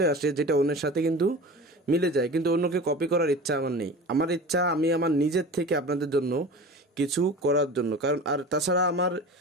আসে যেটা অন্যের সাথে কিন্তু মিলে যায়, কিন্তু অন্যকে কপি করার ইচ্ছা আমার নেই। আমার ইচ্ছা আমি আমার নিজের থেকে আপনাদের জন্য কিছু করার জন্য। কারণ আর তাছাড়া আমার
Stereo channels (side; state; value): both; normal; correlation 0.35